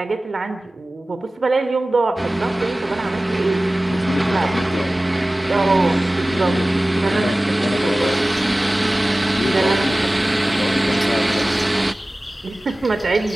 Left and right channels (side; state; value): both; normal; correlation 0.97